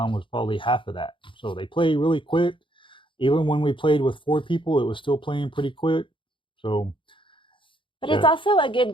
was probably half of that. So they play really quick. Even when we played with 4 people, it was still playing pretty quick. So. But it's also a good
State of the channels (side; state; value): right; late; 0.25 ms